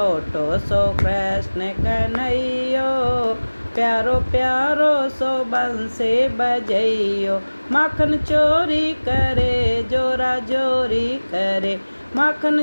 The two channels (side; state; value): both; inverted; correlation -1.00